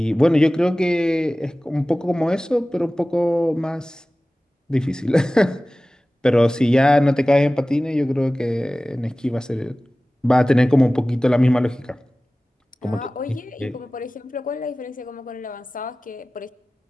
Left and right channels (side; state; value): both; normal; correlation 0.97